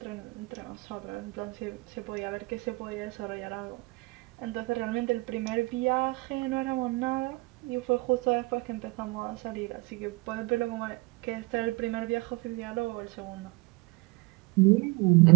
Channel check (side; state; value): left; quieter; 25.1 dB